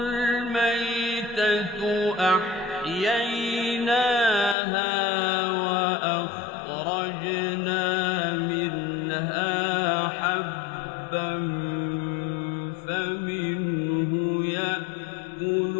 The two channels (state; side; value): drops out; right; at 4.5 s